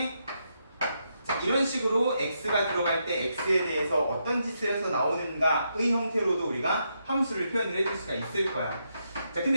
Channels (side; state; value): both; inverted; correlation -0.81